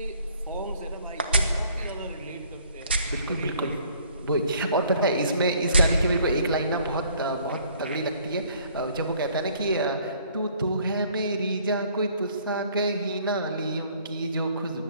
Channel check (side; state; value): both; inverted; correlation -0.59